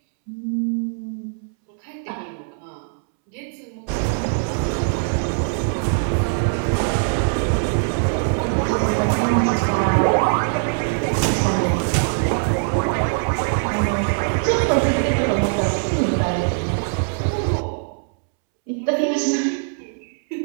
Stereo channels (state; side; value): silent; left; 65 dB below the other